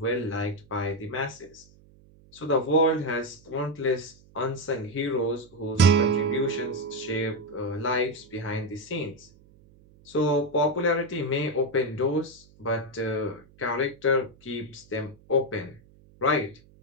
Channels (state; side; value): noise; right; hum, 26 dB below the sound